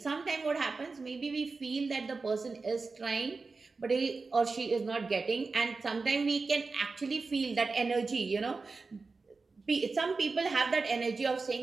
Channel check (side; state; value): left; quieter; 4.1 dB